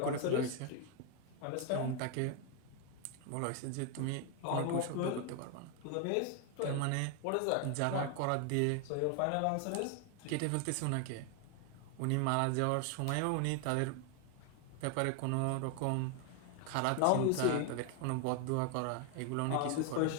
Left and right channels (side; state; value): both; different; correlation 0.01